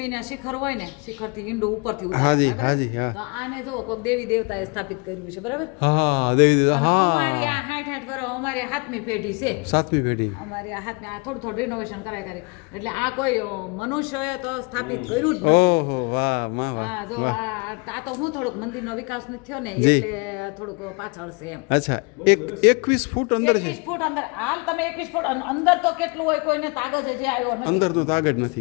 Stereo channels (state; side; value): quieter; right; 31.1 dB